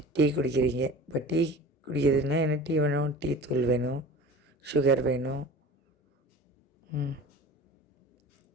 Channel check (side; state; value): both; normal; correlation 0.39